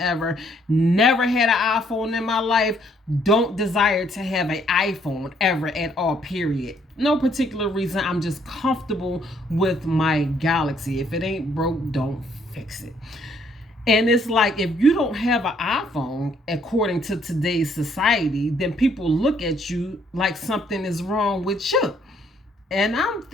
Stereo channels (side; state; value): both; normal; correlation 0.67